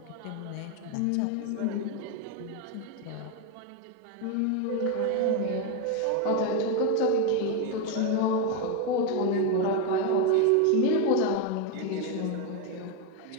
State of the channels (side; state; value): both; different; correlation 0.02